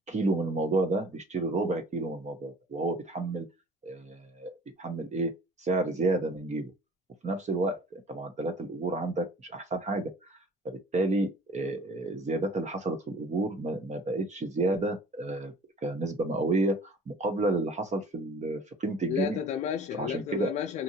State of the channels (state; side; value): normal; both; correlation 0.48